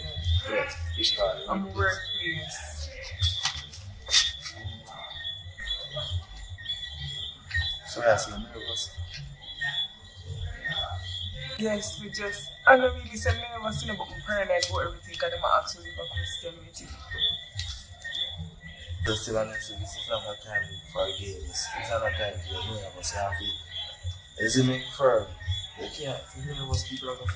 Yeah, I'm workplace. So I see nervous. Yes, we just, I don't really say nervous, but I'm paranoid about everything because I'm asking you a question with it. Just still honestly, this is not a time for games. It's not a time for your nervous. You have to, is it make firm? You can't, if you're nervous, people are going to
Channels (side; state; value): both; identical; correlation 1.00